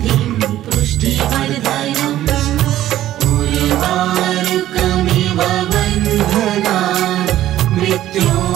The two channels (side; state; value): left; quieter; 13.4 dB